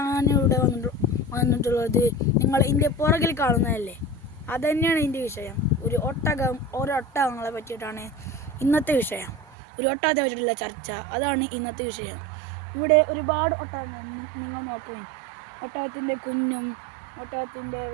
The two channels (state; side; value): drops out; left; at 9.6 s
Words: വന്നിട്ടുള്ളത് നിങ്ങൾ ഇതിൻ്റെ പുറകിൽ കാണുന്നതല്ലേ, അതുതന്നെയാണ് ഇതിൻ്റെ വിഷയം. ഒട്ടകങ്ങളെ പറ്റിയിട്ടാണ് ഇന്നത്തെ വിഷയം. ഒരു ഒട്ടകത്തെ പറ്റിയിട്ടുള്ള ചർച്ച, അതാണ് ഇന്നത്തെ വിഷയം. ഇവിടെ ഒരുപാട് ഒട്ടകങ്ങൾ നിങ്ങൾ നോക്കുകയും, ഒട്ടകത്തിൻ്റെ കുഞ്ഞും ഒട്ടകത്തിൻ്റെ